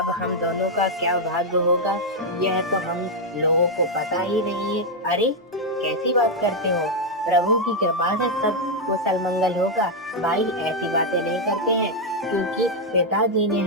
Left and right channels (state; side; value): normal; both; correlation 0.00